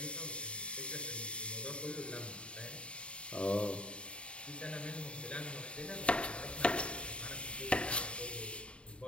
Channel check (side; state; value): right; late; 0.058 ms